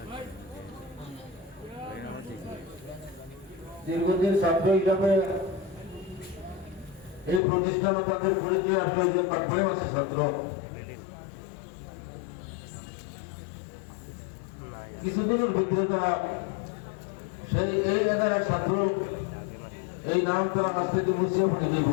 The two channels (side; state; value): right; drops out; at 7.4 s